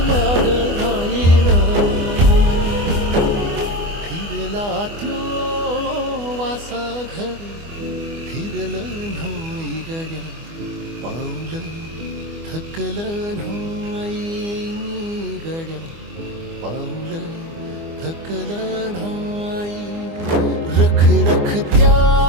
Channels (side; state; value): left; late; 24 ms